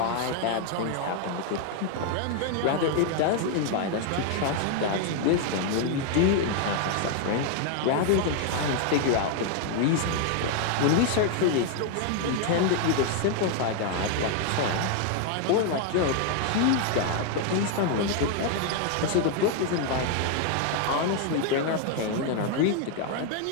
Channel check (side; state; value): both; different; correlation 0.00